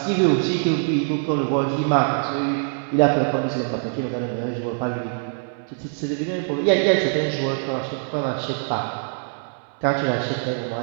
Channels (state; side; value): silent; left; 63 dB below the other